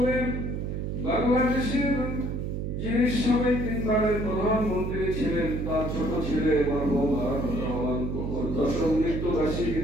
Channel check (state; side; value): noise; right; hum, 3 dB below the sound